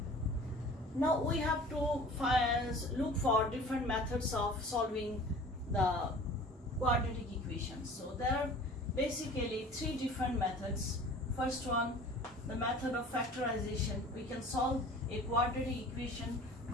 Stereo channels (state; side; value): normal; both; correlation 0.44